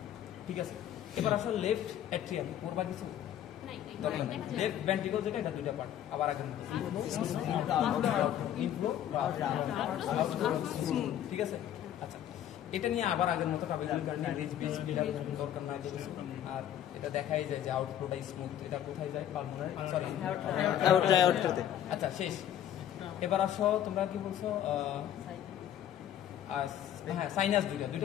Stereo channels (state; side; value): quieter; right; 10.9 dB